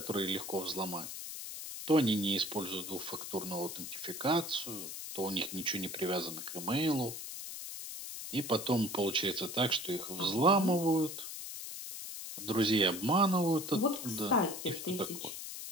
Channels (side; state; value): left; noise; hiss, 8 dB below the sound